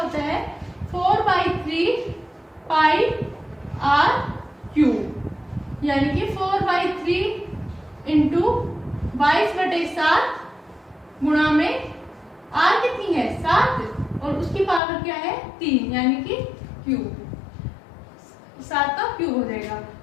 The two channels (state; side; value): drops out; right; at 14.8 s